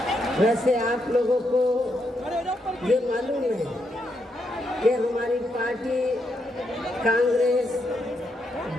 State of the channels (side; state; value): both; normal; correlation 0.80